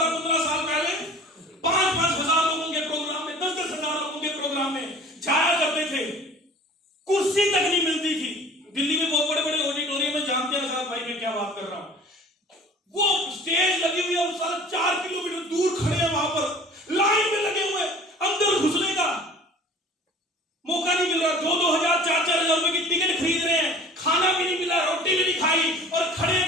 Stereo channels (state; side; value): normal; both; correlation 0.45